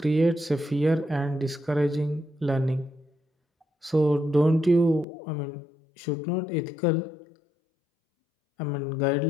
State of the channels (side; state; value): right; drops out; at 5.1 s